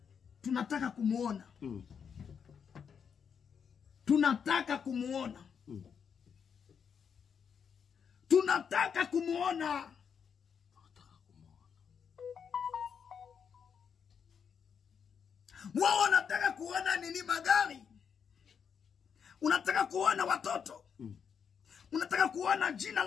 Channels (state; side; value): quieter; right; 7.0 dB